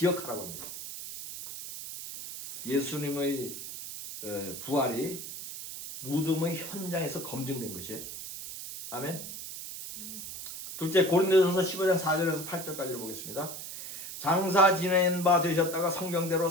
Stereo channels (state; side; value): noise; right; hiss, 9 dB below the sound